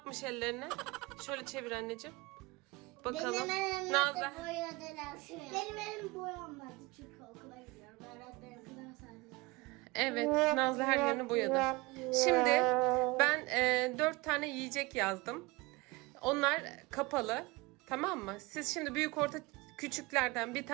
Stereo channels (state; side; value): quieter; left; 23.8 dB